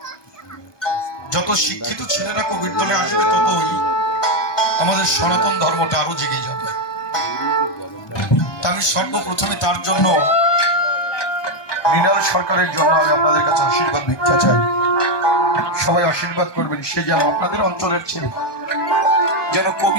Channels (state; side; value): late; right; 1.2 ms